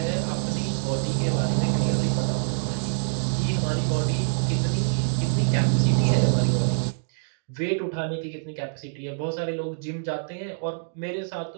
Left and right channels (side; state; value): left; silent; digital silence